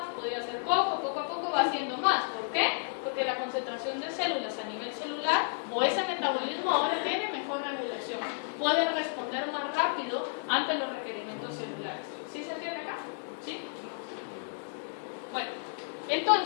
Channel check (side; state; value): right; silent; digital silence